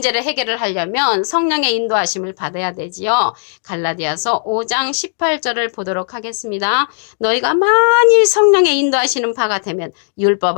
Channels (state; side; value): silent; right; digital silence